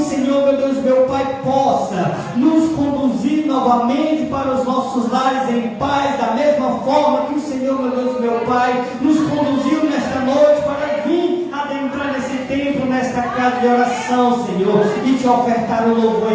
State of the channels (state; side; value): identical; both; correlation 1.00